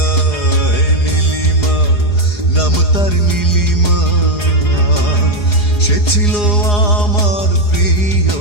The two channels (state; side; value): late; right; 4.8 ms